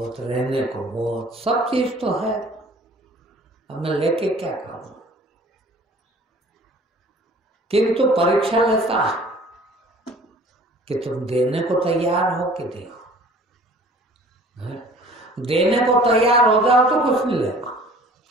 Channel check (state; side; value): normal; both; correlation 0.50